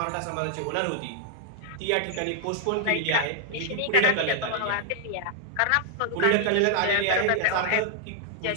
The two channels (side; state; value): both; different; correlation 0.00